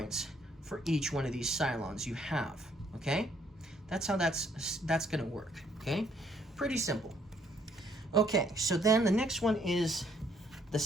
for each one of these Cylons you have. okay? That's how that's going to work, okay? Pretty simple. Okay, so then the next one is the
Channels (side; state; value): both; normal; correlation 0.67